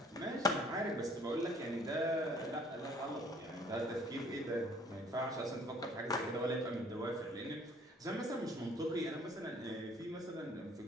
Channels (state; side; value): normal; both; correlation 0.57